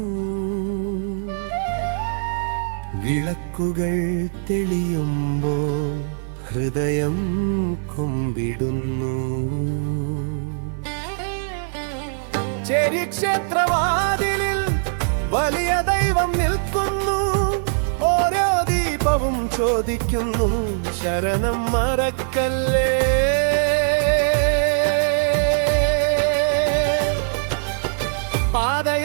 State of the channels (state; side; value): silent; left; 60 dB below the other